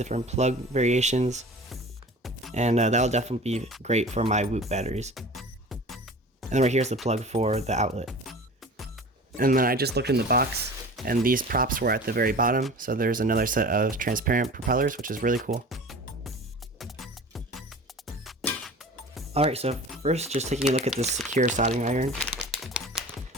plug variations, and that'll definitely be great for my Whoop batteries. And then right here's the plug for the outlet. And then I just looked in the box, and these props were at the very bottom, so there's another set of transparent propellers, which is really cool. Alright, so first just taking a look at this Sequre soldering iron.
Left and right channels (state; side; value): normal; both; correlation 0.39